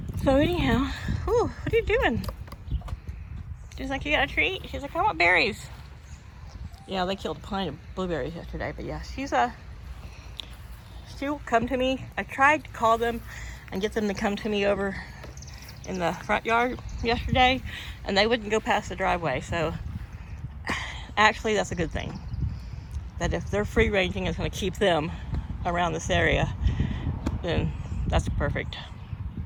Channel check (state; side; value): identical; both; correlation 1.00